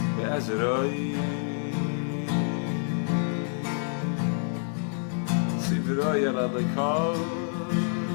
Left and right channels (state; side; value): silent; right; digital silence